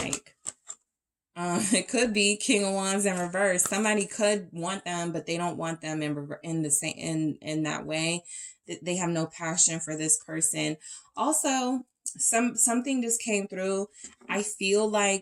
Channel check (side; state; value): both; identical; correlation 1.00